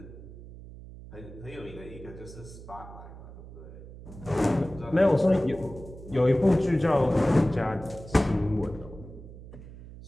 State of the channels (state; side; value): noise; right; hum, 15 dB below the sound